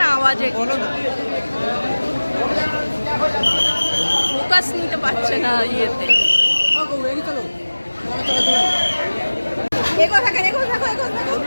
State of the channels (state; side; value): inverted; both; correlation -1.00